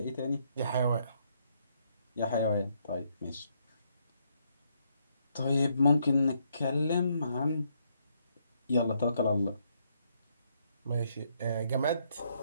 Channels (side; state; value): both; inverted; correlation -0.74